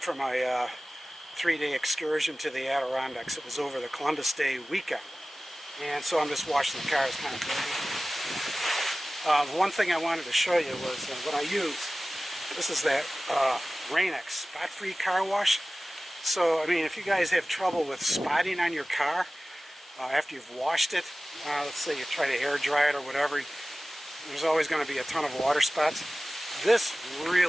from my 3-day excursion to the Adirondacks. It was over the Columbus Day weekend. And so I'm just washing the car. It's kind of dirty. One thing I wanted to show you was what I used. This is that Rain-X spot-free car wash. So, I mean, if you guys have trouble with spotting on your car after you've washed it, let's say you try to air dry it or whatever, there's always going to be a ton of water spots. This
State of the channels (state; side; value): normal; both; correlation 0.97